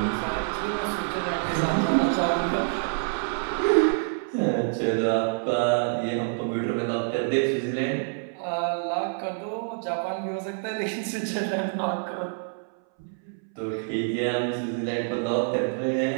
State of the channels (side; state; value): left; silent; 60 dB below the other